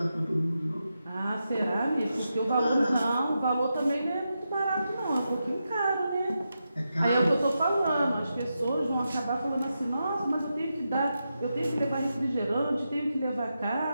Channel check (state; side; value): inverted; both; correlation -0.88